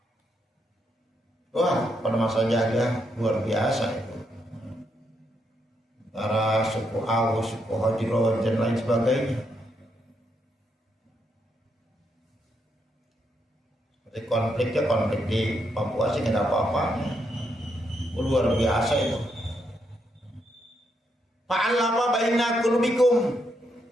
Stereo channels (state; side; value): normal; both; correlation 0.79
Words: Wah, pada masa jahiliyah luar biasa itu. Antara suku Aus, suku Hajro, dan lain sebagainya. Seperti konflik di Papua sih nggak ada apa-apanya. Luar biasa itu. Fa'alafa baina qulubikum.